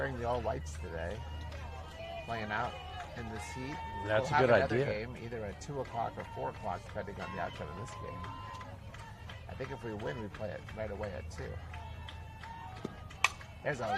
the all whites today, playing out in this heat. That's We'll a good have another idea. game either at 2 o'clock or 4 o'clock, depending on the outcome of this game. I think if we win, we play it right away at 2. There's a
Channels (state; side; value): identical; both; correlation 1.00